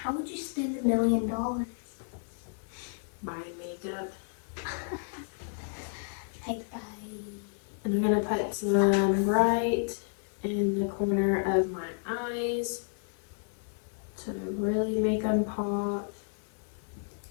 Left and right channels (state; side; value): silent; right; 57 dB below the other